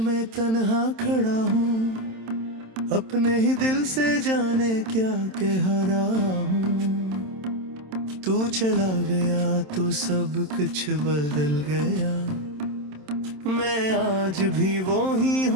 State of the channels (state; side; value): late; left; 27 ms